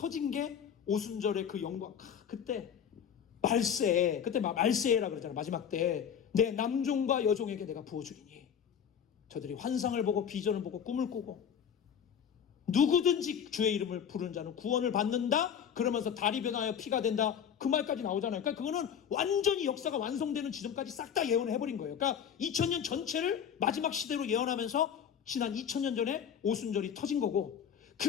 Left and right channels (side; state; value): right; quieter; 8.2 dB